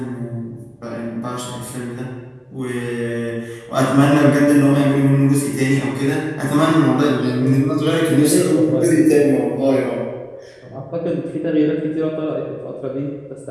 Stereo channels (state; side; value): identical; both; correlation 1.00